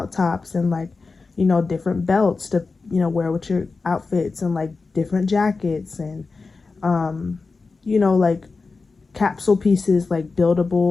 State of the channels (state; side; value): quieter; right; 4.1 dB